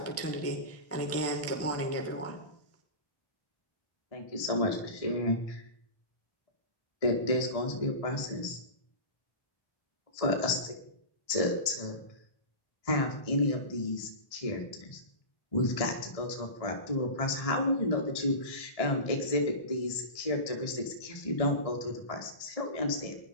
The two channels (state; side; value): late; right; 1.7 ms